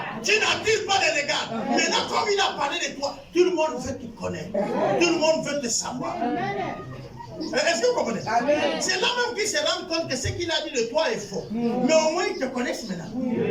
Tu n'attires pas les regards. Maintenant, comme il a parlé de toi, tout le monde veut te connaître. Tout le monde veut te savoir. Est-ce que vous comprenez? C'est là même qu'il se rend compte que ce qu'il a dit de toi est faux. Mais au moins, ils te connaissent maintenant.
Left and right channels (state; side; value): identical; both; correlation 1.00